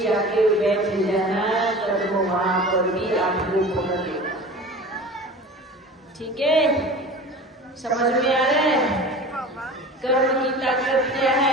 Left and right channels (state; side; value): normal; both; correlation 0.38